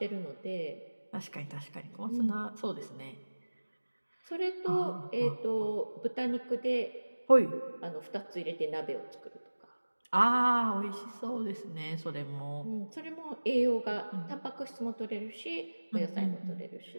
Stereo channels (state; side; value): inverted; both; correlation -1.00